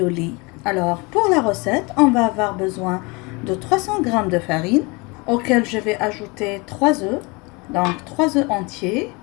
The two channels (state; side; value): quieter; right; 27.4 dB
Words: Alors pour la recette, on va avoir besoin de 300 g de farine auquel je vais ajouter 3 œufs. Donc 3 œufs entiers,